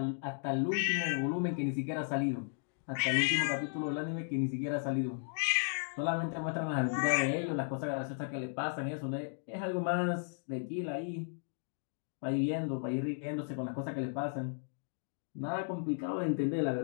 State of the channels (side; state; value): right; silent; digital silence